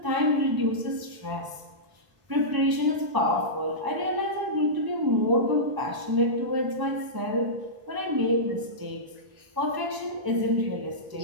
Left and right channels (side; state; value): left; late; 1.0 ms